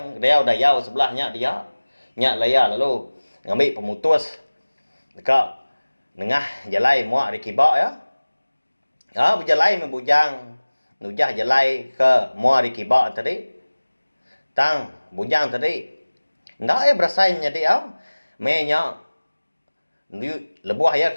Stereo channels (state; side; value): inverted; both; correlation -1.00